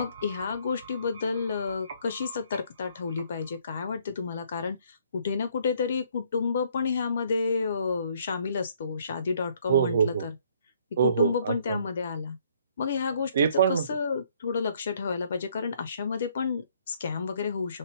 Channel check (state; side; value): inverted; both; correlation -0.64